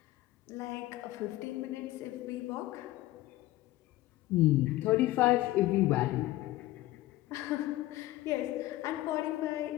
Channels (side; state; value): right; quieter; 16.8 dB